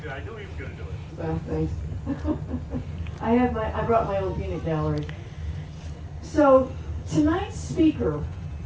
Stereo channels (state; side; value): identical; both; correlation 1.00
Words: it. I knew he was going to do it. Well, thanks. I brought my own peanut gallery. So tonight's speaker